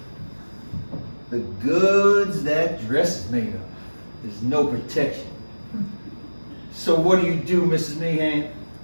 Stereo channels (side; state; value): both; inverted; correlation -1.00